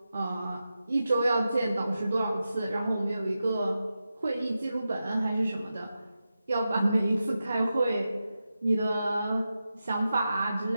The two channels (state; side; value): inverted; both; correlation -0.91